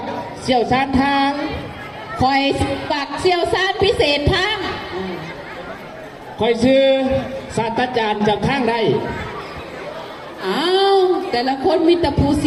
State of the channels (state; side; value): identical; both; correlation 1.00